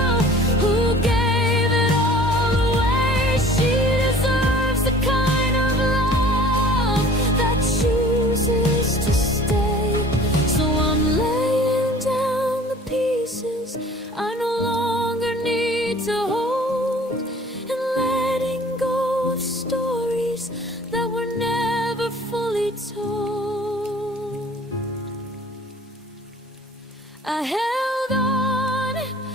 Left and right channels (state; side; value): normal; both; correlation 0.48